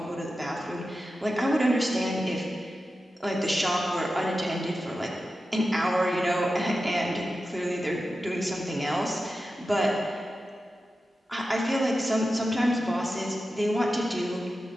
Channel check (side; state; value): both; normal; correlation 0.92